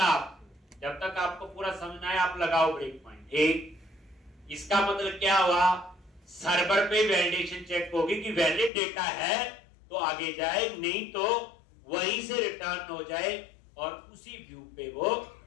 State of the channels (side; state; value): right; drops out; at 8.7 s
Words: जब तक आपको पूरा समझना है आप लगाओ ब्रेक पॉइंट। एक, इसका मतलब क्या हुआ, सर्वर पे वैलिडेशन चेक होगी कि वैलिड डेटा है तो आगे जाए, नहीं तो वहीं से रिटर्न हो जाए और उसी व्यू पे वो